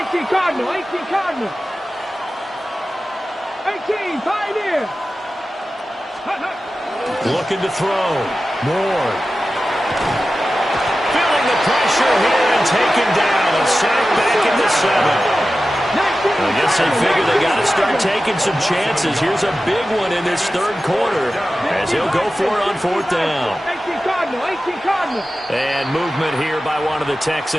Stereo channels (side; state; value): both; normal; correlation 0.94